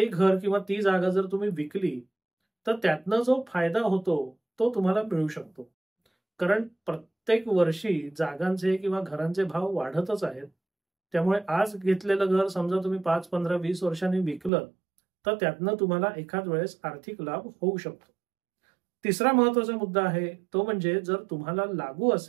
घर किंवा ती जागा जर तुम्ही विकली, तर त्यातनं जो फायदा होतो, तो तुम्हाला मिळू शकतो. कारण प्रत्येक वर्षी जागांचे किंवा घरांचे भाव वाढतच आहेत. त्यामुळे आज घेतलेलं घर समजा तुम्ही 5, 15, 20 वर्षांनी विकलं, तर त्यातनं तुम्हाला एखाद वेळेस आर्थिक लाभ होऊ शकतो. तिसरा महत्वाचा मुद्दा आहे, तो म्हणजे जर तुम्हाला लागू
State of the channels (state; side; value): drops out; left; at 14.5 s